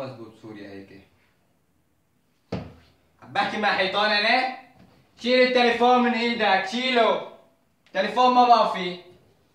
بسوريا هيك. عم بحكي مع حيطان انا؟ شيل التليفون من ايدك، شيله. تليفون ما بقى فيه.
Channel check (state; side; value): identical; both; correlation 1.00